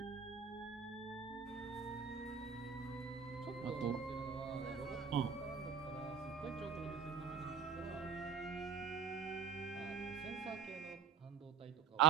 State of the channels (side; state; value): left; quieter; 7.3 dB